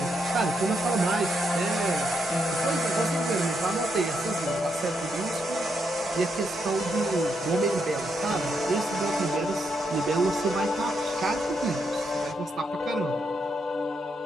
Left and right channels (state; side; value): normal; both; correlation 0.79